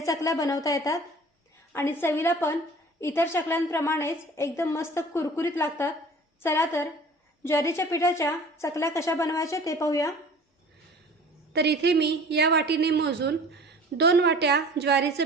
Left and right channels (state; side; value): normal; both; correlation 0.45